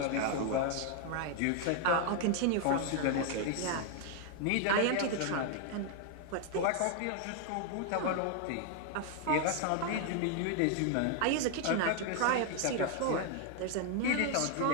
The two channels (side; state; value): both; different; correlation 0.00